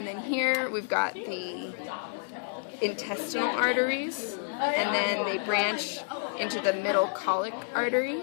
then here we've got the intestinal arteries, and then they branch into the middle colic artery.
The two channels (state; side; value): silent; right; digital silence